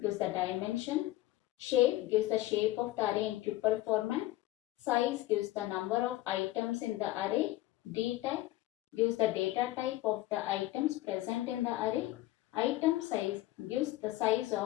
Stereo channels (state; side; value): quieter; right; 16.7 dB